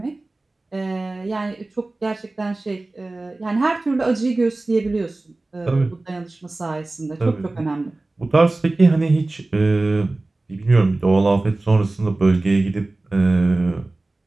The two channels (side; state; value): left; quieter; 3.0 dB